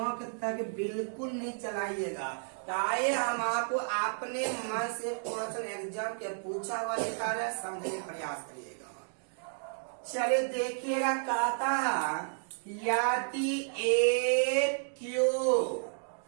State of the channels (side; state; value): left; silent; digital silence